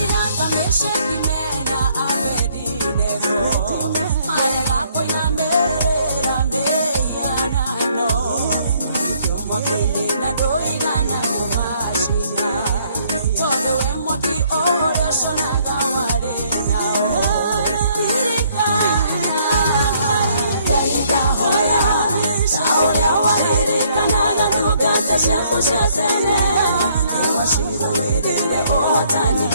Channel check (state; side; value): inverted; both; correlation -0.66